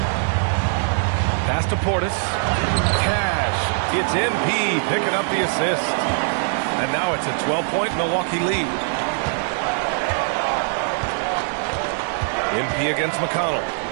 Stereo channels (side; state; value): left; silent; digital silence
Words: Pass to Portis. Cash. It's MP picking up the assist. And now it's a 12-point Milwaukee lead. MP against McConnell.